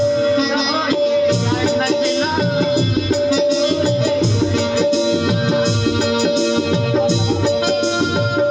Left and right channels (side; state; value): both; identical; correlation 1.00